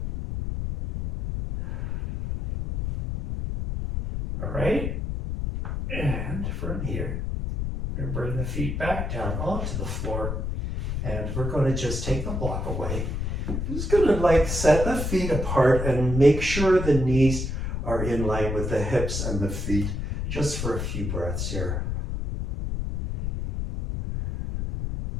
All right, and from here, we're going to bring the feet back down onto the floor, and we're going to just take the block away. I'm just going to like set the feet apart and make sure the knees are in line with the hips and the feet, just for a few breaths here.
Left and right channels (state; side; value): noise; left; rumble, 2 dB below the sound